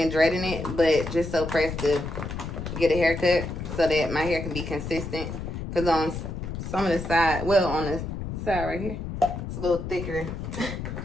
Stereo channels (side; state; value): left; noise; rumble, 6 dB below the sound